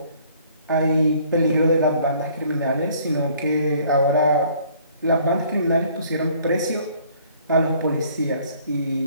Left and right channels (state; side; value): inverted; both; correlation -0.58